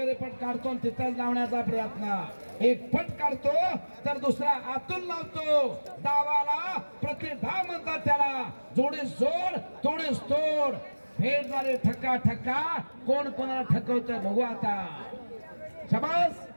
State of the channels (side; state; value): both; inverted; correlation -1.00